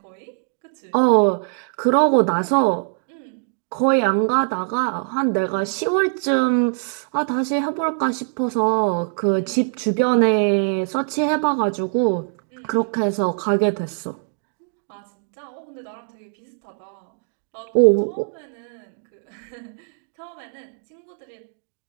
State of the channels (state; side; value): silent; left; 64 dB below the other